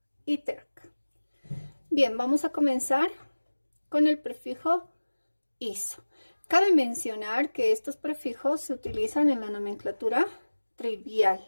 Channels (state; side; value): inverted; both; correlation -1.00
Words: y terc. Bien, vamos a comenzar con el prefijo iso. Cabe mencionar que estos prefijos se utilizan en la nomenclatura